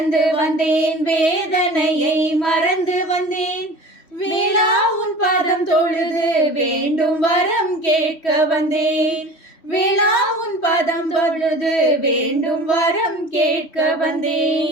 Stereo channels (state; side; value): late; right; 3.1 ms